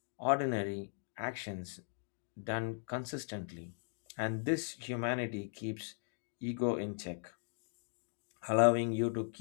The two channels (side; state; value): right; silent; 52 dB below the other